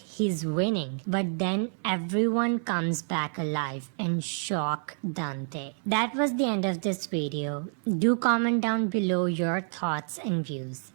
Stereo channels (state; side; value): silent; left; 57 dB below the other